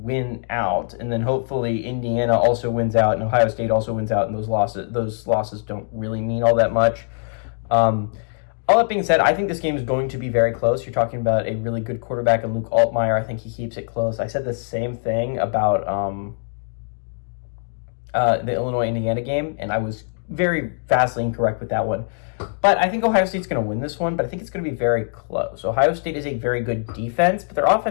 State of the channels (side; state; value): right; silent; 64 dB below the other